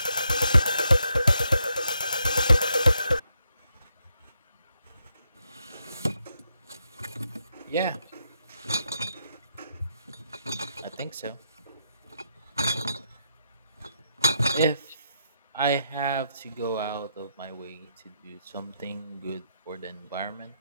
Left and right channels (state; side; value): inverted; both; correlation -0.80